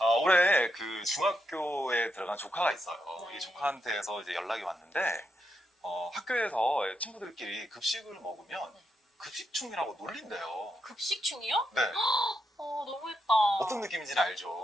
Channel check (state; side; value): normal; both; correlation 0.83